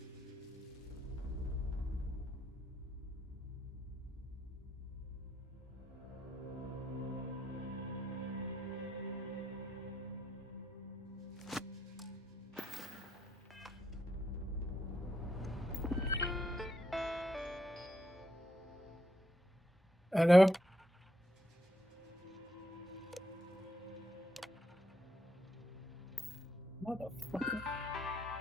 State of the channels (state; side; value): normal; both; correlation 0.78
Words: I know. Motherfucker.